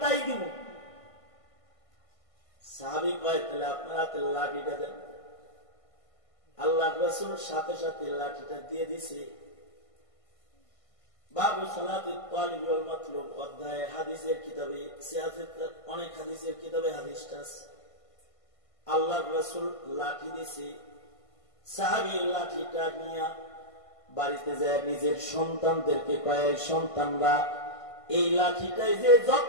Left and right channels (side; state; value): right; late; 1.5 ms